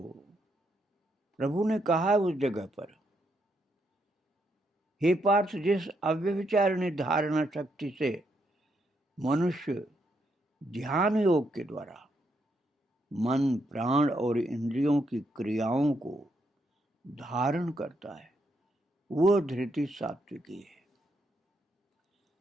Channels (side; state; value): both; normal; correlation 0.78